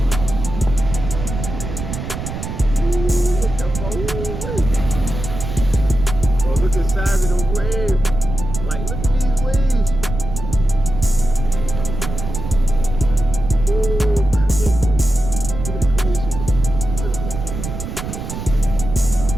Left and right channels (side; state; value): right; noise; rumble, 6 dB below the sound